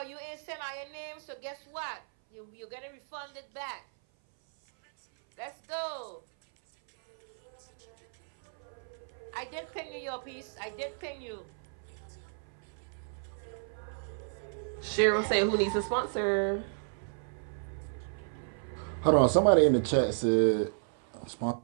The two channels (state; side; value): silent; left; 56 dB below the other